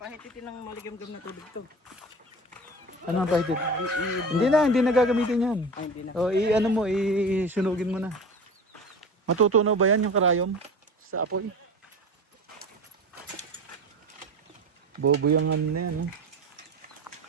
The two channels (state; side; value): normal; both; correlation 0.33